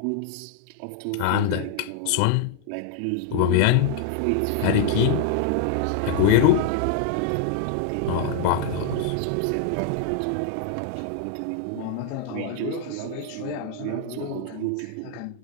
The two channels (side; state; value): both; different; correlation 0.00